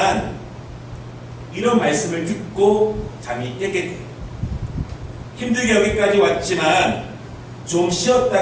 이런 말씀을 듣고 잠이 깨게 돼요. 힘들게 여기까지 왔지만 좀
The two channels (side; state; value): both; identical; correlation 1.00